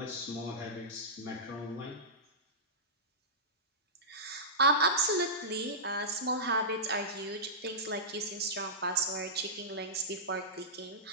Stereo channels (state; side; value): normal; both; correlation -0.17